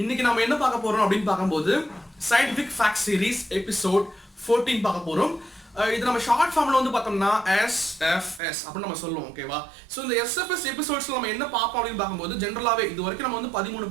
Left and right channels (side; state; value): left; drops out; at 8.4 s